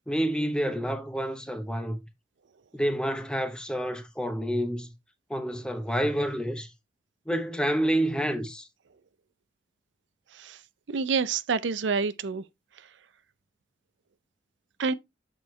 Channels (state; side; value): normal; both; correlation 0.67